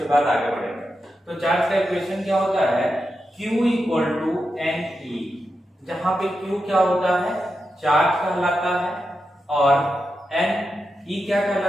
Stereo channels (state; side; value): normal; both; correlation 0.88